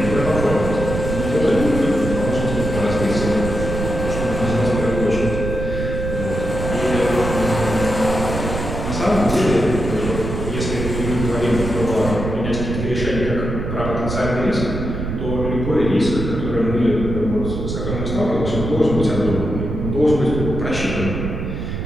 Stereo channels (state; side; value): noise; right; rumble, 4 dB below the sound